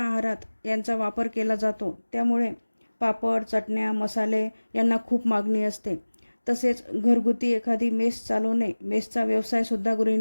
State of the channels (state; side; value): inverted; both; correlation -1.00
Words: यांचा वापर केला जातो, त्यामुळे पापड, चटण्या, मसाले यांना खूप मागणी असते. तसेच घरगुती एखादी मेस चालवणे, मेसचा व्यवसायसुद्धा